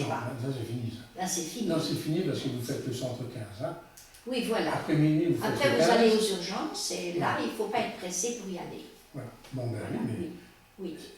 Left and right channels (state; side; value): identical; both; correlation 1.00